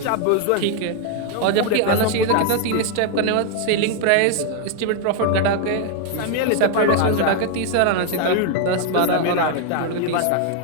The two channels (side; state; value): both; different; correlation 0.00